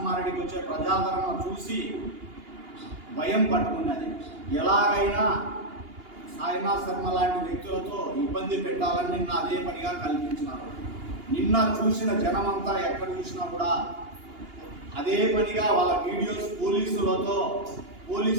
వచ్చే ప్రజాదరణ చూసి భయం పట్టుకున్నది. ఎలాగైనా సాయినాథ్ శర్మ లాంటి వ్యక్తులతో ఇబ్బంది పెట్టాలని నిన్న అదే పనిగా కల్పించినారు. నిన్న చూసిన జనమంతా ఎక్కడ చూసినా కూడా అదే పనిగా వాళ్ళ వీడియోస్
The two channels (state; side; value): late; left; 2.8 ms